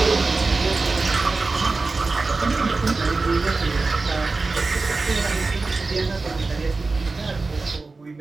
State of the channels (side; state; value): left; quieter; 3.8 dB